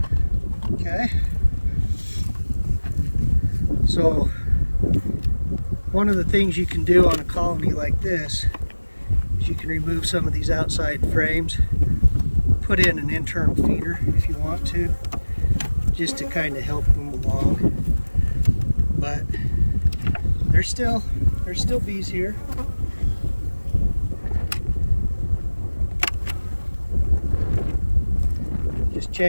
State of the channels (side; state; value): both; inverted; correlation -1.00